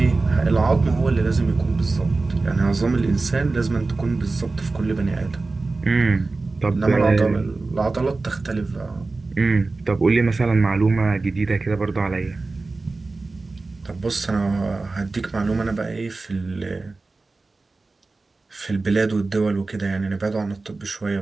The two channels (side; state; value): left; quieter; 3.6 dB